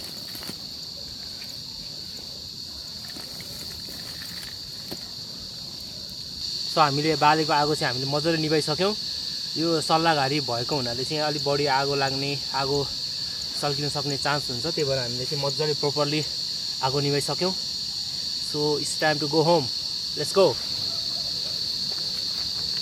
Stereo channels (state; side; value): identical; both; correlation 1.00